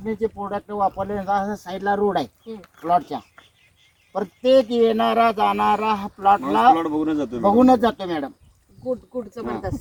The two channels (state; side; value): identical; both; correlation 1.00